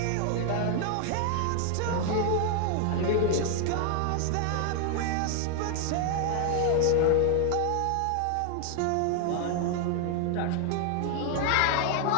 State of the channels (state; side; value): different; both; correlation 0.00